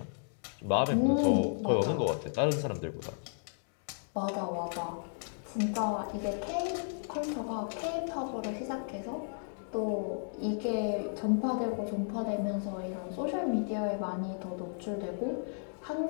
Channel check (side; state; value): right; silent; digital silence